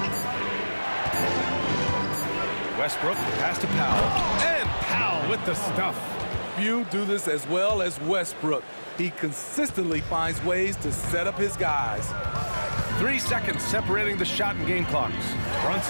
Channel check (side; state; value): both; inverted; correlation -1.00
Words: Westbrook, pass to Powell. And Powell with the stuff. Few do this as well as Westbrook. He consistently finds ways to set up his guys. 3 seconds separating the shot and game clocks.